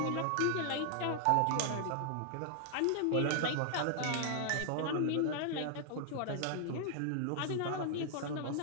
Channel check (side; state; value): both; different; correlation 0.00